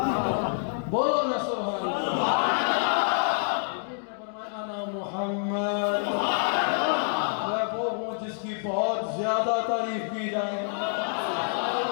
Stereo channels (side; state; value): right; silent; digital silence